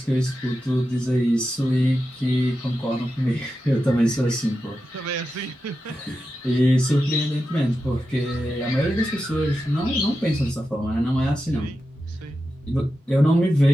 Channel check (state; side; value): normal; both; correlation 0.90